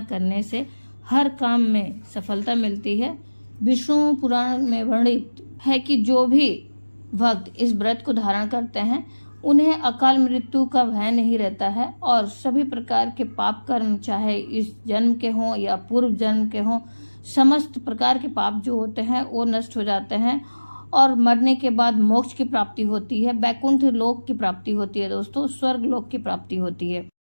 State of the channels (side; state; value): both; inverted; correlation -1.00